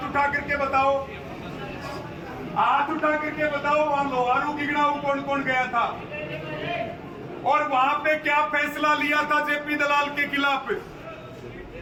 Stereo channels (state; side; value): identical; both; correlation 1.00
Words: उठा करके बताओ, हाथ उठा करके बताओ। वहां लोहारू गिगड़ाऊ कौन कौन गया था और वहां पे क्या फैसला लिया था जेपी दलाल के खिलाफ?